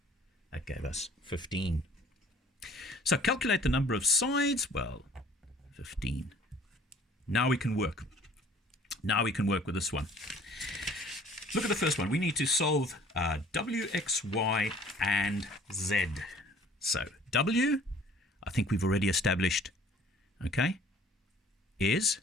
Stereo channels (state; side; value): normal; both; correlation 0.53